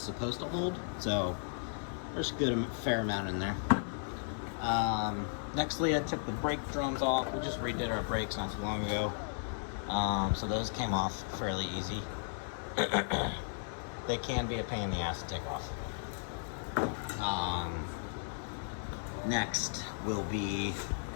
supposed to hold. So there's a fair amount in there. Nextly, I took the brake drums off. We just redid our brakes not too long ago. So those came off fairly easy. They can be a pain in the ass to take off. Next will be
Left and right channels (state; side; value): silent; right; digital silence